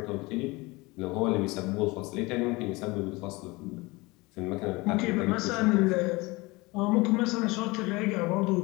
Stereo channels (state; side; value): quieter; right; 23.5 dB